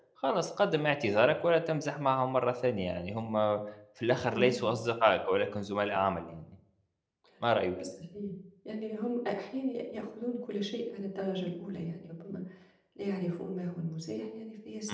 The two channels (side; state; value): both; identical; correlation 1.00